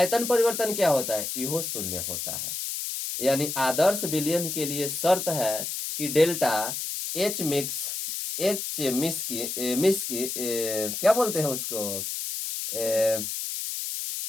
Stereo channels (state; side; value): noise; left; hiss, 4 dB below the sound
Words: परिवर्तन क्या होता है? इहो शून्य होता है। यानी आदर्श विलयन के लिए शर्त है कि डेल्टा क्या बोलते हैं उसको?